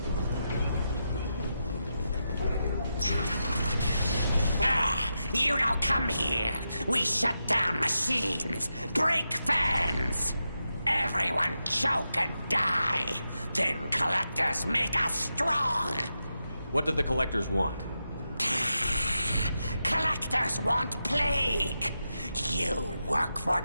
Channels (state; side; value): inverted; both; correlation -0.88